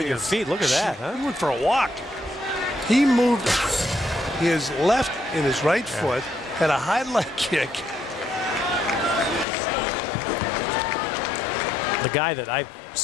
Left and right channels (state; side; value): drops out; right; at 9.5 s